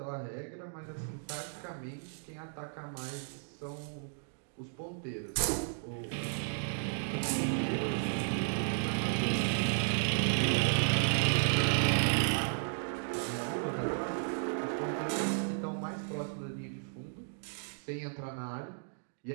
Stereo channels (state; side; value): silent; left; digital silence